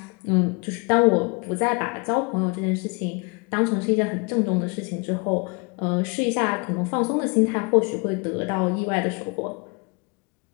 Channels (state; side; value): quieter; right; 31.8 dB